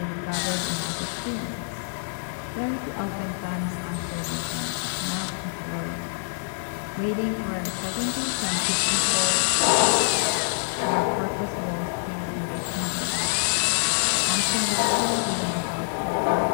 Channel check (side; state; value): right; silent; digital silence